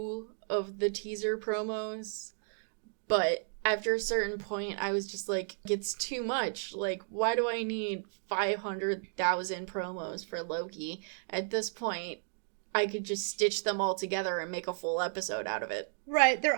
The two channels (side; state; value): left; silent; digital silence